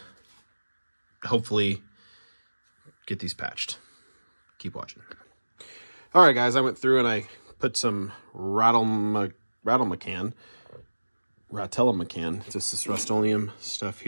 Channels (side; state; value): both; inverted; correlation -1.00